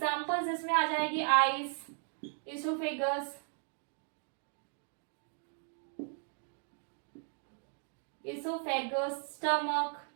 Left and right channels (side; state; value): left; silent; 54 dB below the other